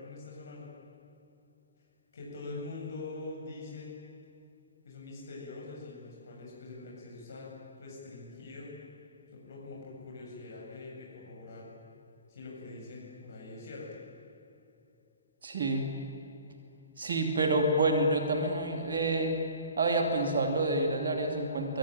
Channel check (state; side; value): inverted; both; correlation -0.47